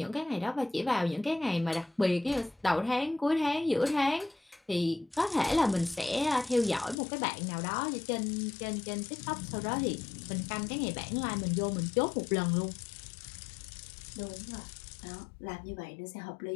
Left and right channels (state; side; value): drops out; right; at 7.0 s